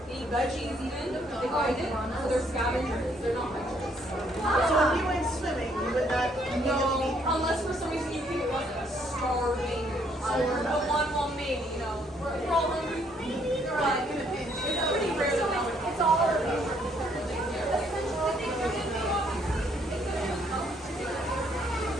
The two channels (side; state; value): both; normal; correlation 0.68